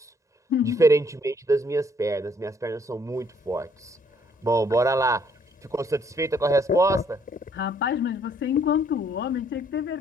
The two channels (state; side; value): normal; both; correlation 0.66